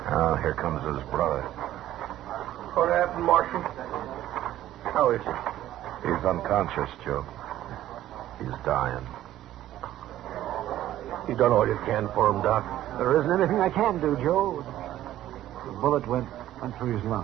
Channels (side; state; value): left; quieter; 13.3 dB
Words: Oh, here comes his brother. What happened, Marshal? How is he? He's unconscious, Joe. He's dying. You done all you can for him, Doc. There isn't anything I can do, Joe. The bullet went through his